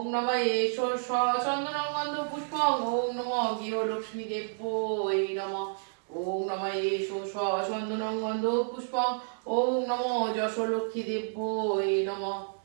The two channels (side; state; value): left; silent; digital silence